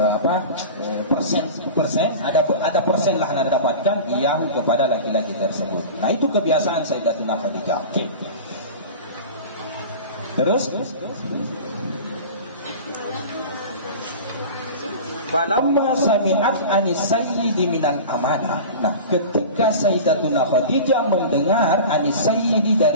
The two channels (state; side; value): inverted; both; correlation -0.34